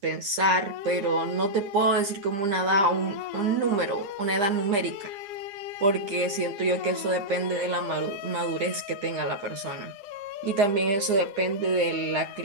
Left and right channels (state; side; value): late; left; 10 ms